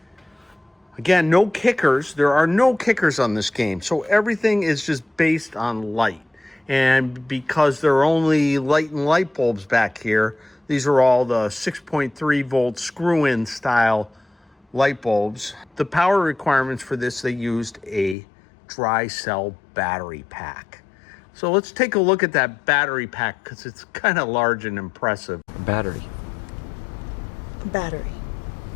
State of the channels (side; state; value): right; drops out; at 18.2 s